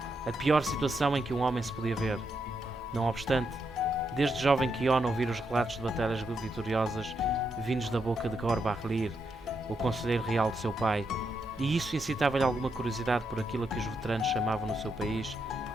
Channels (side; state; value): both; normal; correlation 0.81